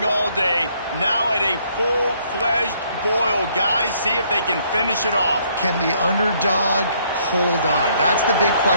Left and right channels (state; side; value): inverted; both; correlation -0.67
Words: all day. Now at a full-fledged boil. Guys, see if they can finish it off. Can the underdog hold on? That's the big